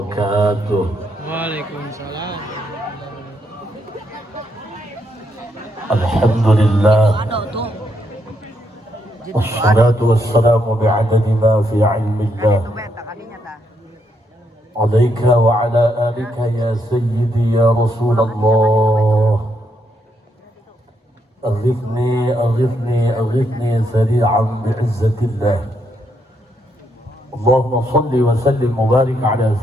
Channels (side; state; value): both; normal; correlation 0.77